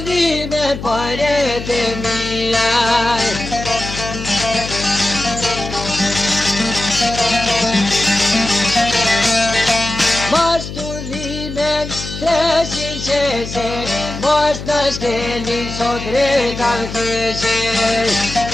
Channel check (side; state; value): left; noise; hum, 9 dB below the sound